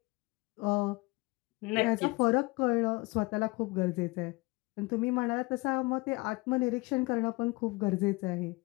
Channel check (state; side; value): quieter; right; 24.4 dB